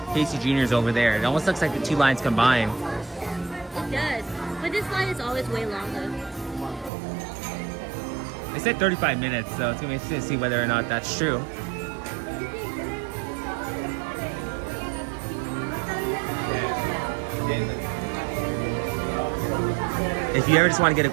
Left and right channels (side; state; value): left; drops out; at 6.9 s